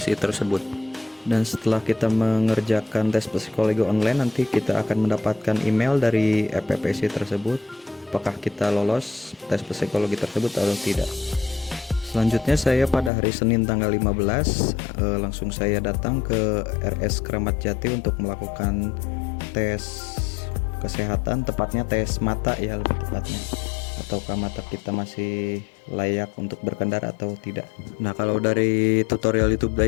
tersebut. Dan setelah kita mengerjakan tes psikologi online, nanti kita akan mendapatkan email dari EPPSI tersebut apakah kita lolos tes psikologi tersebut atau tidak. Selanjutnya saya pada hari Senin tanggal 15 langsung saya datang ke RS Kramat Jati untuk melakukan tes kesehatan, tepatnya tes mata ya lebih tepatnya, ataukah mata kita masih layak untuk berkendara atau tidak. Nah, kalau dari tutorial YouTube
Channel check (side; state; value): right; drops out; at 13.1 s